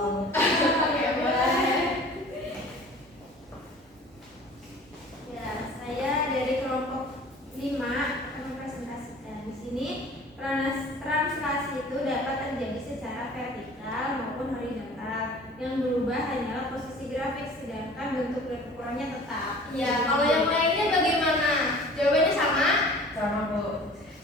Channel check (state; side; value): normal; both; correlation 0.46